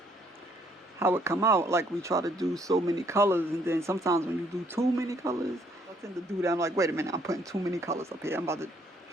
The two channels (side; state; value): both; normal; correlation 0.67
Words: how it come out. Like we try to do so many colors, and then sometimes when you do too many colors, I tend to do that. I'm like, wait a minute, I'm putting too many colors up here. I'm about to